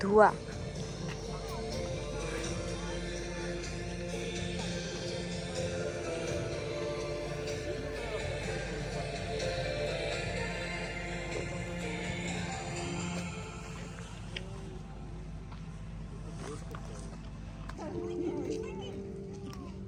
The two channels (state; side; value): identical; both; correlation 1.00